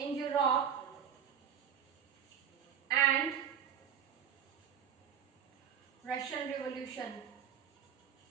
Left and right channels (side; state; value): left; quieter; 8.3 dB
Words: Europe and Russian revolution.